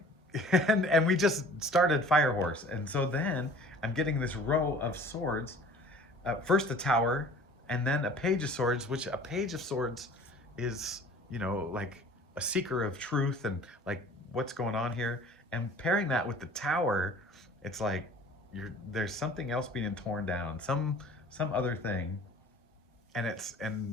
and we just started Fire Horse. And so then I'm getting this row of swords, first the Tower, and then a Page of Swords, which a Page of Swords is, you know, like a seeker of truth and like what's going on here. And pairing that with the Tower, it's like there's something else being torn down, some other thing. And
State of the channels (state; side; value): normal; both; correlation 0.48